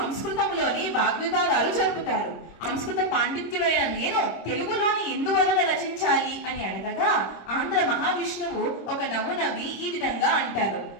వాగ్వివాదాలు జరుపుతారు. సంస్కృత పాండిత్యుడైన నేను తెలుగులోని ఎందువలన రచించాలి అని అడగగా ఆంధ్ర మహావిష్ణువు ఒక నవ్వు నవ్వి ఈ విధంగా అంటారు,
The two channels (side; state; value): right; late; 26 ms